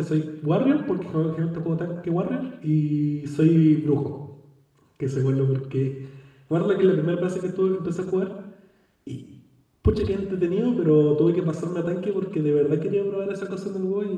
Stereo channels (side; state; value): both; identical; correlation 1.00